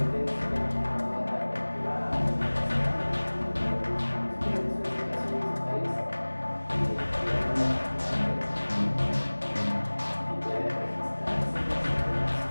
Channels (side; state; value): both; inverted; correlation -1.00